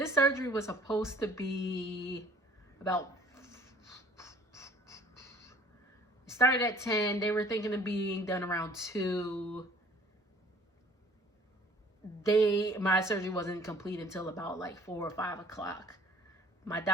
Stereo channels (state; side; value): normal; both; correlation 0.53